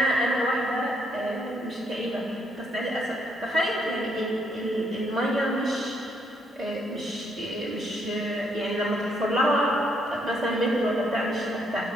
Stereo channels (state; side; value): normal; both; correlation 0.73